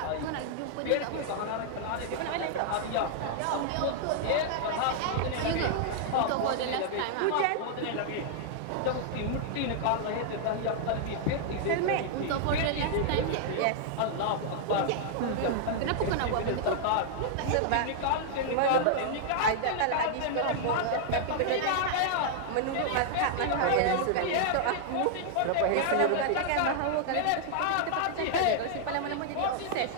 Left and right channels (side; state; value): both; different; correlation -0.01